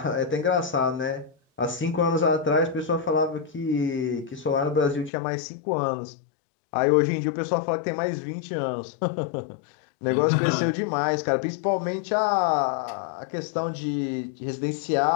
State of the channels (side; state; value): right; drops out; at 5.1 s